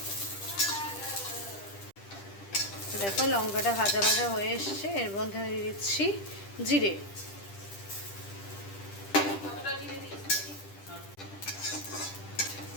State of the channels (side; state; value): right; late; 10 ms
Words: দেখো লঙ্কাটা ভাজা ভাজা হয়ে এসছে। এর মধ্যে আমি দিয়ে দিচ্ছি জিরে।